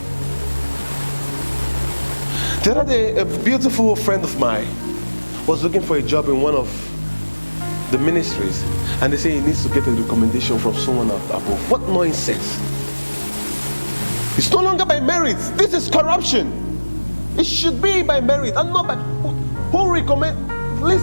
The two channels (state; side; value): inverted; both; correlation -1.00